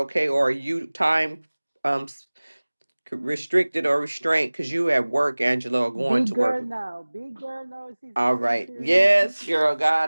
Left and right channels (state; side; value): inverted; both; correlation -1.00